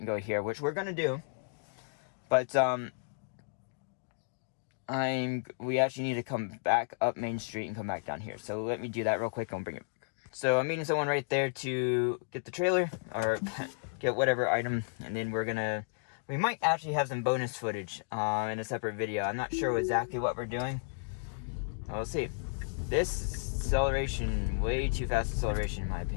go here, which we're gonna do. But we actually need to come back up Main Street and come back down here. So let me do that real quick and bring it. So I'm meeting someone right there to get the trailer, or get whatever item, and then we might actually have some bonus footage in a separate video. I'm not sure exactly what we're doing. We'll see. This acceleration, way too fast acceleration in my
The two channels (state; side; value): silent; right; digital silence